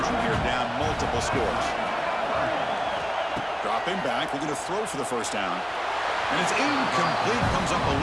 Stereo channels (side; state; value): both; identical; correlation 1.00